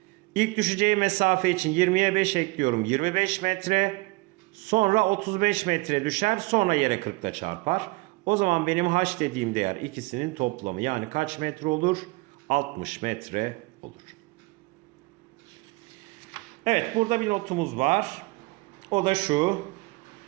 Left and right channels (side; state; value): left; quieter; 24.3 dB